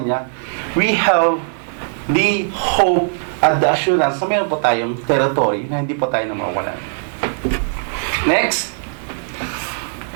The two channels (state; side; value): silent; left; digital silence